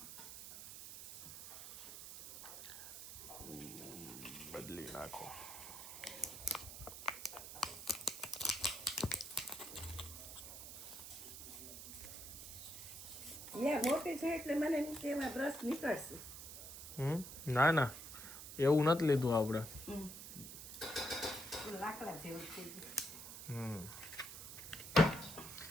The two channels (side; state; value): right; noise; hiss, 10 dB below the sound